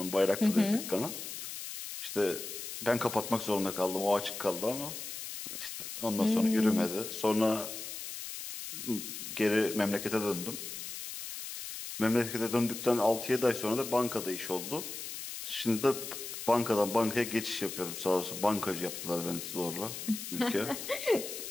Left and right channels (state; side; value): noise; left; hiss, 8 dB below the sound